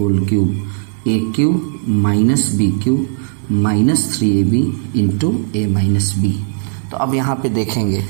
cube, a³ minus b³ minus 3ab into a minus b. तो अब यहाँ पे देखेंगे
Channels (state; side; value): silent; left; digital silence